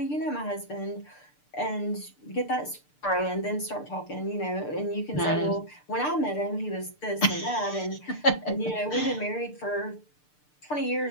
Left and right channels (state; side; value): late; right; 6.7 ms